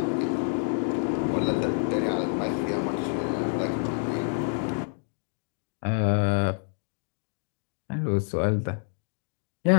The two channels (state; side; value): silent; right; digital silence